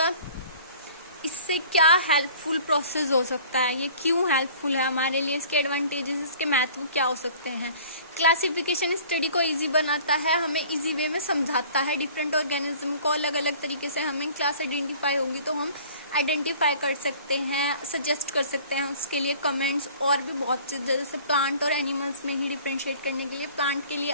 इससे क्या हेल्पफुल प्रोसेस हो सकता है, ये क्यों हेल्पफुल है हमारे लिए, इसके एडवांटेजेस, इसके महत्व क्या हो सकते हैं। क्लासिफिकेशन स्टडी को इजी बनाता है, हमें इजी वे में समझाता है डिफरेंट ऑर्गेनिज्म को अलग अलग तरीके से। हमें क्लास आइडेंटिफाई होगी तो हम आइडेंटिफाई कर सकते हैं, सजेस्ट कर सकते हैं उसके लिए कमेंट्स, और भी बहुत चीज़। जैसे प्लांट और एनिमल्स में ही डिफ्रेंशिएट करने के लिए प्लांट के लिए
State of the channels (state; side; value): inverted; both; correlation -0.48